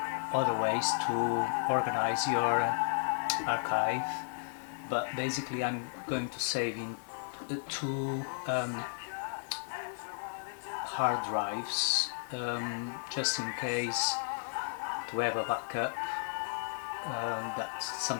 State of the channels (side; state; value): right; silent; 55 dB below the other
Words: other ways to organize your archive. But basically I'm going to save in two hard drives just in case, to have a backup that